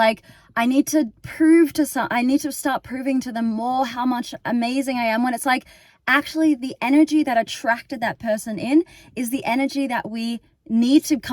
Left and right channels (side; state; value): both; identical; correlation 1.00